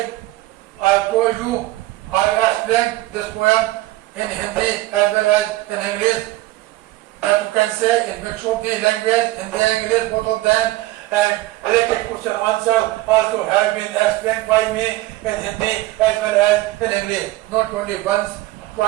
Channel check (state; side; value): quieter; left; 17.7 dB